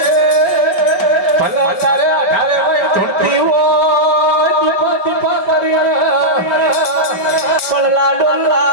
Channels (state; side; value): late; right; 5.3 ms